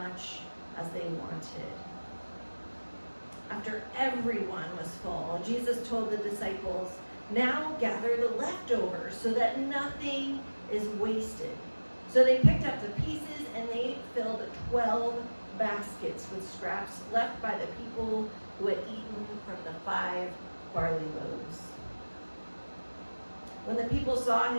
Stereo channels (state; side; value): inverted; both; correlation -1.00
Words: as they wanted. After everyone was full, Jesus told the disciples, "Now gather the leftovers so that nothing is wasted." So they picked up the pieces, and they filled 12 baskets with scraps left by the people who had eaten from the 5 barley loaves. When the people saw